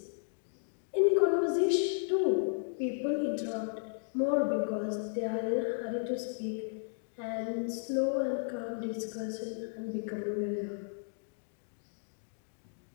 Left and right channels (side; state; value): right; silent; digital silence